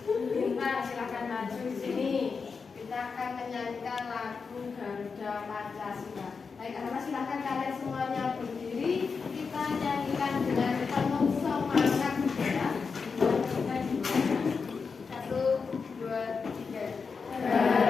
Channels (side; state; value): right; quieter; 5.2 dB